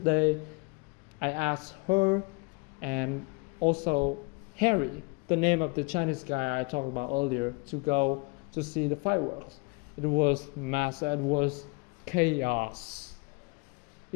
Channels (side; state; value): right; quieter; 30.6 dB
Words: I asked her and also Harry, the name of the Chinese guy I talked about earlier, to go to see the fireworks. It was massive. It was chaos.